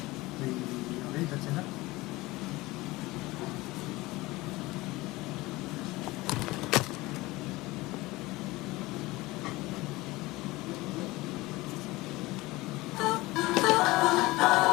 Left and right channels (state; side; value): quieter; right; 20.4 dB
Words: Okay, that's enough.